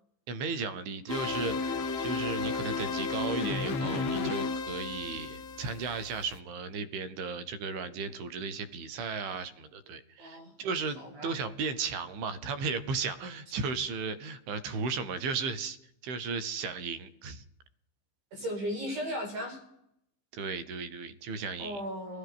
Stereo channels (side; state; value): left; late; 15 ms